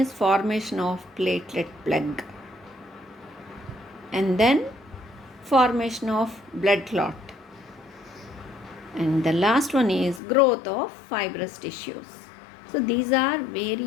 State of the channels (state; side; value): drops out; right; at 10.2 s